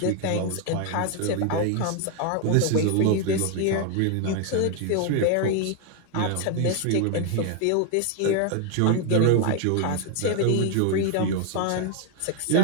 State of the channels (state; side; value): different; both; correlation 0.01